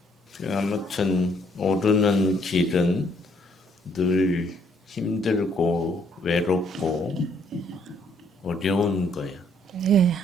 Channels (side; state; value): both; normal; correlation 0.67